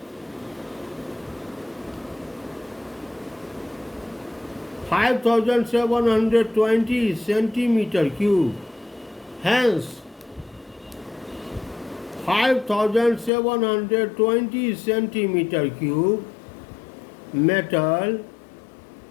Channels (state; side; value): drops out; right; at 13.3 s